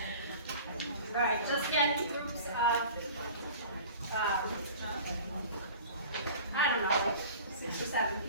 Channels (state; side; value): inverted; both; correlation -0.42